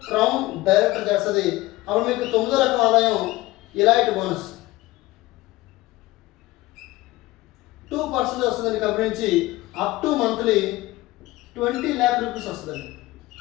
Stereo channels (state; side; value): quieter; right; 18.8 dB